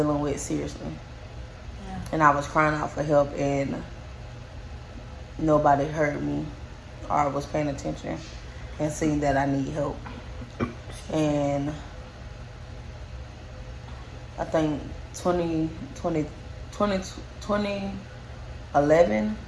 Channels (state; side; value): identical; both; correlation 1.00